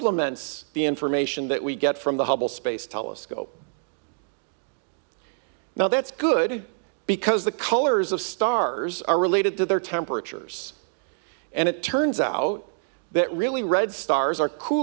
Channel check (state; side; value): silent; left; digital silence